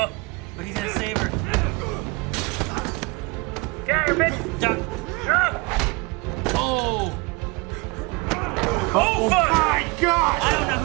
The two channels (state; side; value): quieter; left; 26.3 dB